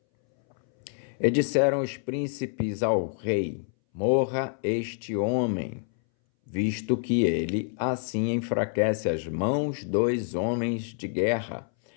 E disseram os príncipes ao rei: morra este homem, visto que ele assim enfraquece as mãos dos homens de guerra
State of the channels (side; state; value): right; silent; 60 dB below the other